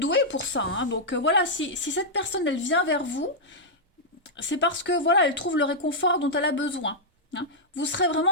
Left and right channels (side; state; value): both; normal; correlation -0.07